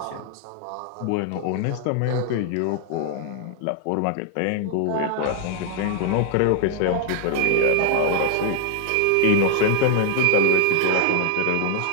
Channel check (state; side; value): different; both; correlation 0.00